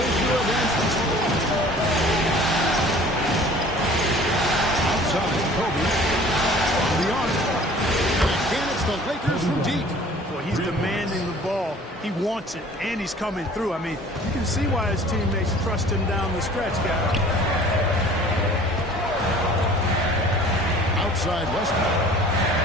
Outside, Kobe. On the arc. And again, it's the Lakers from deep. Well, he's demanding the ball. He wants it, and he's coming through. I mean, you can see why his teammates trust him down the stretch, guys. Outside Westbrook.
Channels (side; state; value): both; normal; correlation 0.49